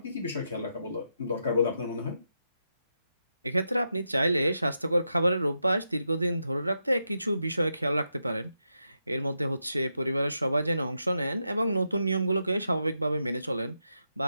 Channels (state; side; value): inverted; both; correlation -0.85